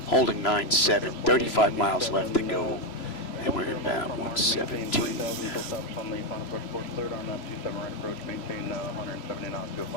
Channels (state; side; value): late; right; 3.0 ms